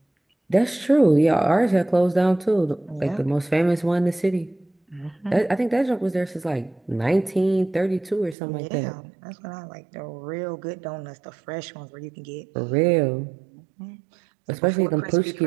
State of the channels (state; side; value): drops out; left; at 8.3 s